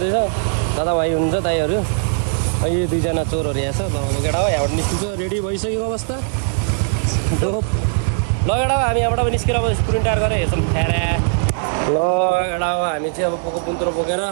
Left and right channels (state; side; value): silent; left; digital silence